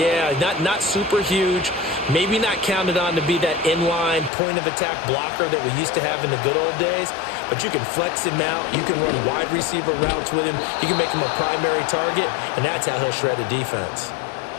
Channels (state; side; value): drops out; right; at 4.3 s